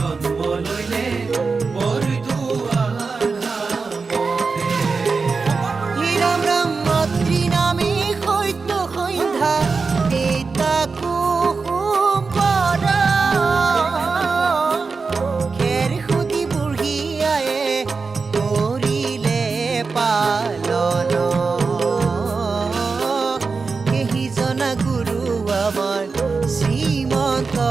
লইলে বৰদোৱা ধামতে। ৰাম ৰাম মাতৃ নামে সত্য সন্ধ্যা পিতা কুসুম পৰা খেৰ সুধি বুঢ়ী আয়ে কৰিলে পালন। সেইজনা গুৰু আমাৰ শ্ৰীমন্ত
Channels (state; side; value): quieter; left; 4.5 dB